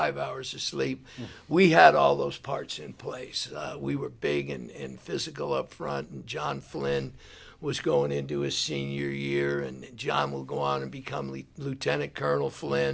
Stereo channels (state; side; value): identical; both; correlation 1.00